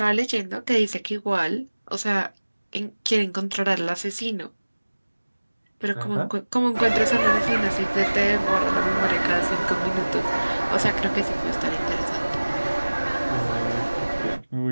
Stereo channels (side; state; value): both; inverted; correlation -1.00